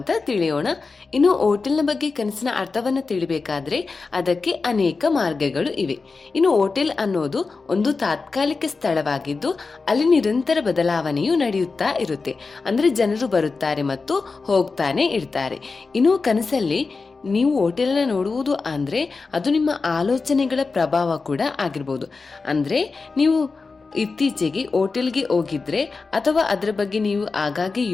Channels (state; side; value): quieter; right; 4.3 dB